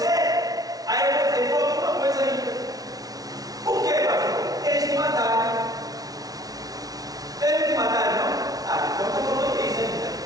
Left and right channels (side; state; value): left; late; 0.18 ms